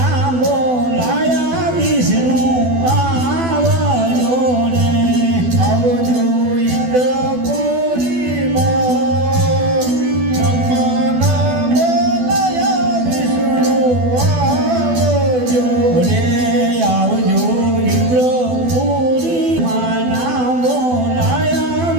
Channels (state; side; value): late; left; 12 ms